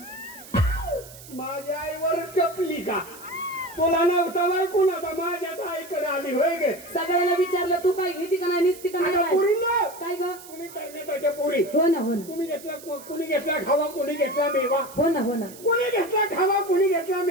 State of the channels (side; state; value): right; noise; hiss, 18 dB below the sound